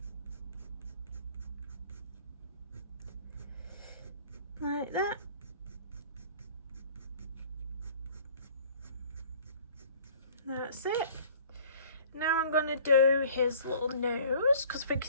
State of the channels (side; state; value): both; inverted; correlation -0.51